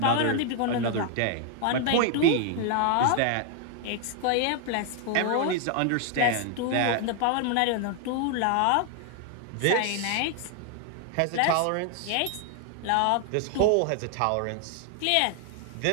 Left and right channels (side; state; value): both; different; correlation 0.00